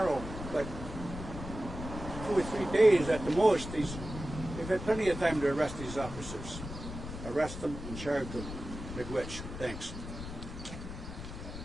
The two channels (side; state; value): left; noise; rumble, 9 dB below the sound